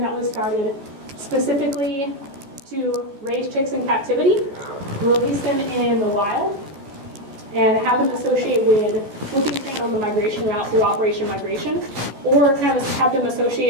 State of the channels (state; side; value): late; left; 14 ms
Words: that was started specifically to raise chicks in captivity, release them in the wild, and have them associate with whooping cranes on the migration route through Operation Migration, or kind of have them